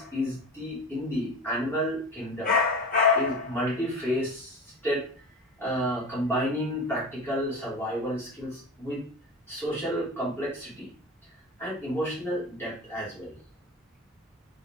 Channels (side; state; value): both; normal; correlation 0.31